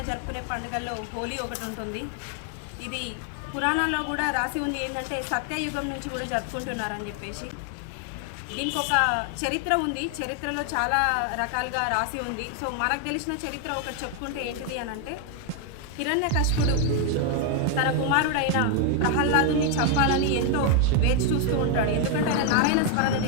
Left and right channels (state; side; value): different; both; correlation 0.01